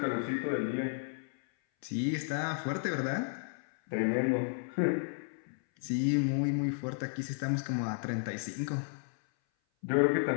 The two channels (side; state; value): right; silent; 56 dB below the other